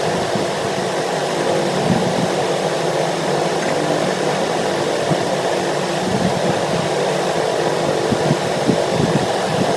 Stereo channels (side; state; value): both; identical; correlation 1.00